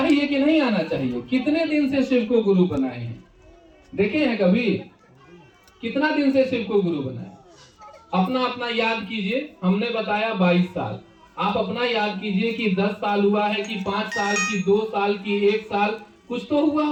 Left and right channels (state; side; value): identical; both; correlation 1.00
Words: कि नहीं आना चाहिए? कितने दिन से शिव को गुरु बनाए हैं? देखे हैं कभी? कितना दिन से शिव को गुरु बनाए? अपना अपना याद कीजिए। हमने बताया 22 साल, आप अपना याद कीजिए कि 10 साल हुआ है कि 5 साल की, 2 साल की, 1 साल, कुछ तो हुआ